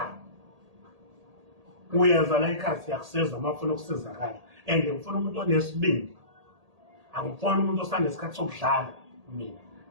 uyenza la ikhaya siyakusiza uma ufuna ukusizakala, and ngifuna umuntu onesibindi. Angifuni umuntu osanesikhathi sokudlala mina,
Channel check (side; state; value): left; late; 1.8 ms